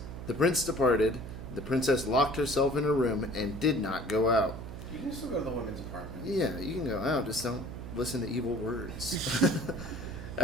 The prince departed. The princess locked herself in her room and did not go out. You can still go to the women's apartment. Yeah, you can go out, just don't listen to evil words.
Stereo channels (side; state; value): right; noise; hum, 10 dB below the sound